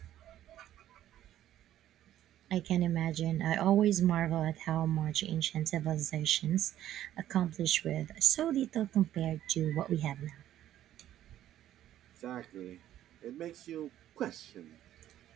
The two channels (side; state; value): left; quieter; 12.3 dB